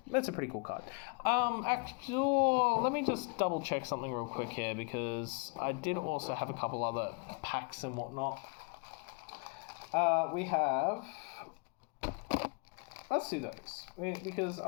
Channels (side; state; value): right; quieter; 35.7 dB